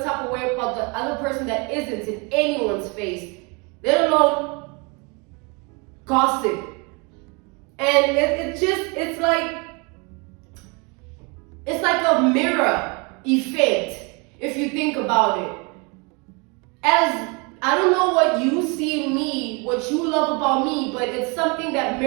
type of way about the other person that isn't in anyone's face, let alone gossip. And it's like a mirror effect, if you think about it. As I don't know what you see in me, what you love about me, but it's something that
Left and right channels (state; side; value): quieter; left; 30.6 dB